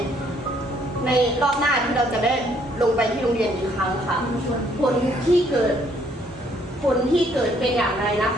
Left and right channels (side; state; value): both; normal; correlation 0.66